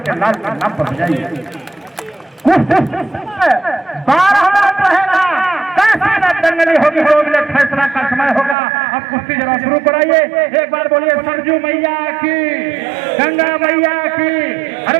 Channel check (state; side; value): drops out; left; at 8.6 s